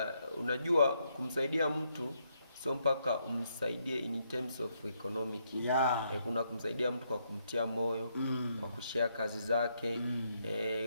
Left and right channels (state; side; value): inverted; both; correlation -0.76